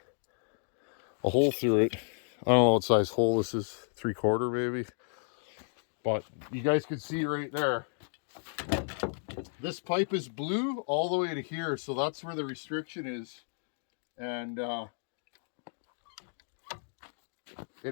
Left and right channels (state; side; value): silent; right; digital silence